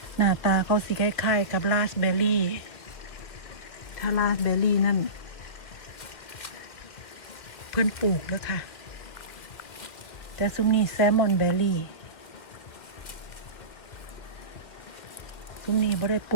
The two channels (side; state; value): right; late; 2.2 ms